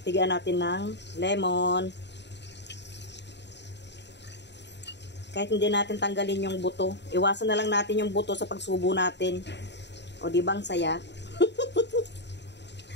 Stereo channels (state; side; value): late; right; 0.51 ms